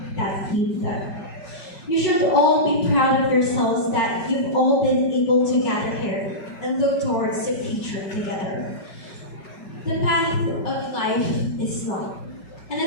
that you've done. You should all be proud of yourselves that you've all been able to gather here and look towards the future together. The path of life is long, and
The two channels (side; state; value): right; late; 5.4 ms